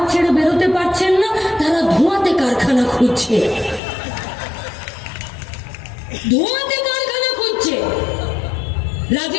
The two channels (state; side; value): drops out; right; at 3.8 s